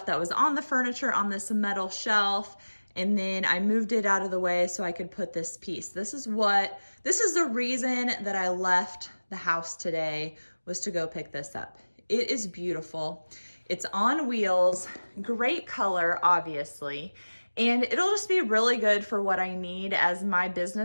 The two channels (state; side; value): inverted; both; correlation -1.00